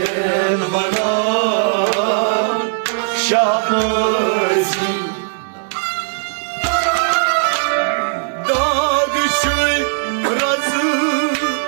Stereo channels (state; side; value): silent; left; 62 dB below the other